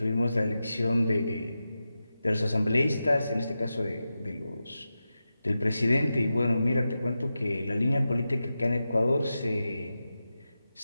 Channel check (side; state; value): both; inverted; correlation -0.92